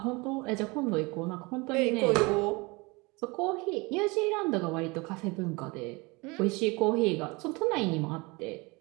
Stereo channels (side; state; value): left; quieter; 25.9 dB